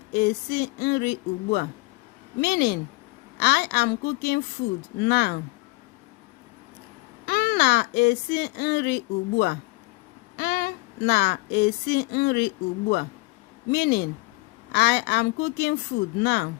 esi nri ugbua. Meaning, I am cooking food now. M na-esi nri ugbua. M na-esi nri ugbua. Meaning, I am cooking food now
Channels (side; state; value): right; quieter; 25.0 dB